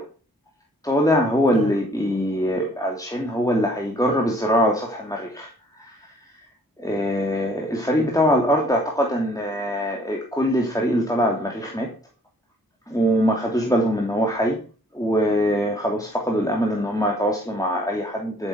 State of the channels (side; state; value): both; normal; correlation 0.59